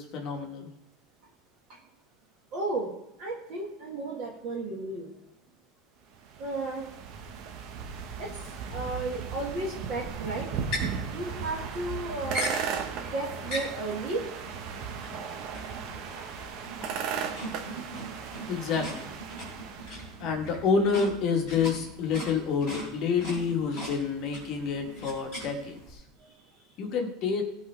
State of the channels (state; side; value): normal; both; correlation 0.30